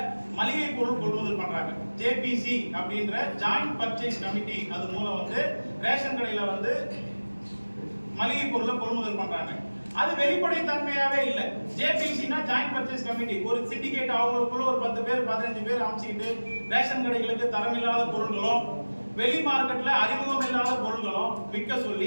மளிகை பொருள் கொள்முதல் பண்றாங்க. ஜேபிசி அப்படின்ற ஜாயிண்ட் பர்ச்சேஸ் கமிட்டி அது மூலம் வந்து ரேஷன் கடையில வந்து மளிகை பொருளை கொள்முதல் பண்றாங்க. அது வெளிப்படைத்தன்மையாவே இல்லை. ஜேபிசினா ஜாயிண்ட் பர்ச்சேஸ் கமிட்டி, ஒரு சிண்டிகேட் அவங்களுக்குள்ள ஒரு 10 பேர் 15 பேர் அமைச்சுக்கிட்டு ரேஷன் கடைகளுக்கு தரமில்லாத பொருட்களும் வெளி மார்க்கெட்ல அறிமுகம் இல்லாத பொருட்களும் விற்க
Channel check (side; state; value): both; inverted; correlation -1.00